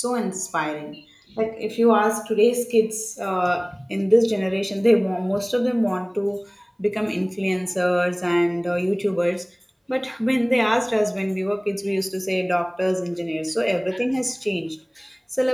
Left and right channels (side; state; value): both; identical; correlation 1.00